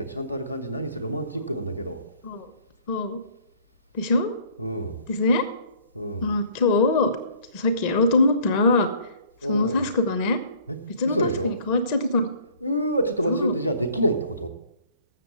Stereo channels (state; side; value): inverted; both; correlation -0.55